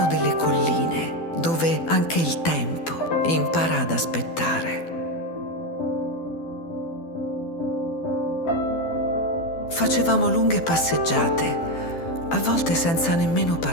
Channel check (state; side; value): late; right; 12 ms